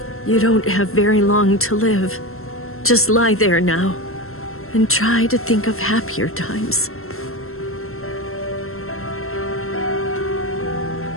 You don't have very long to live. Just lie there now, and try to think of happier times.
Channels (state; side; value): late; right; 0.62 ms